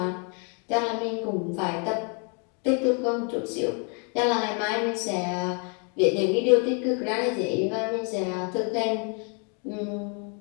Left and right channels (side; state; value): right; quieter; 37.3 dB